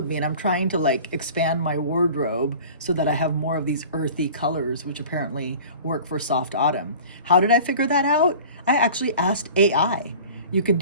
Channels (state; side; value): inverted; both; correlation -0.42